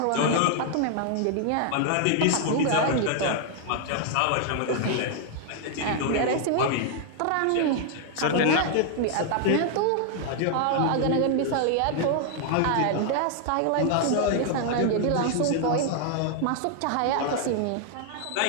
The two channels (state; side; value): different; both; correlation 0.00